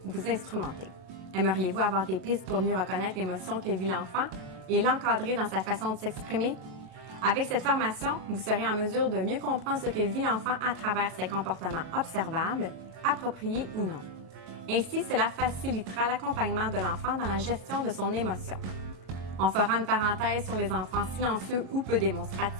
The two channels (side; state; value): left; late; 22 ms